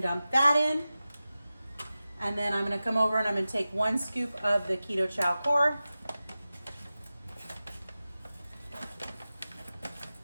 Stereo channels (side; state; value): both; inverted; correlation -0.95